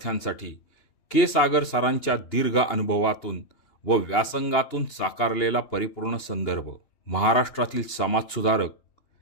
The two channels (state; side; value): late; right; 2.8 ms